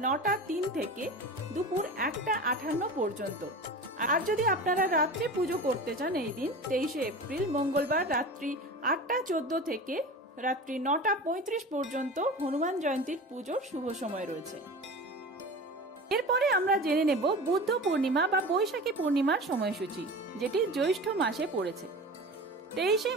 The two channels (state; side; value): normal; both; correlation 0.33